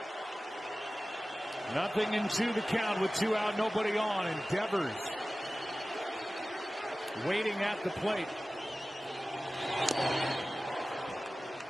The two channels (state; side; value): normal; both; correlation 0.97